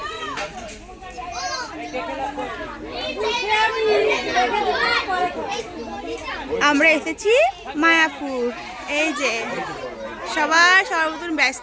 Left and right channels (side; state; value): both; identical; correlation 1.00